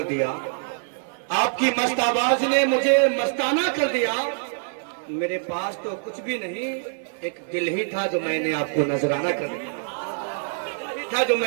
دیا، آپ کی مست آواز نے مجھے مستانہ کر دیا، میرے پاس تو کچھ بھی نہیں، ایک دل ہی تھا جو میں نے آپ کو نذرانہ کر دیا، جو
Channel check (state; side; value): silent; left; 60 dB below the other